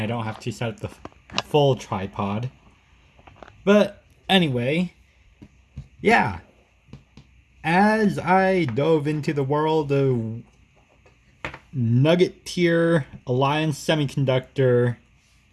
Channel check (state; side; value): identical; both; correlation 1.00